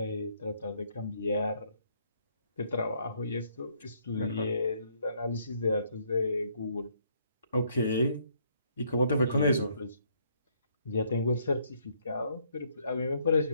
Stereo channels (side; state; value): both; inverted; correlation -0.69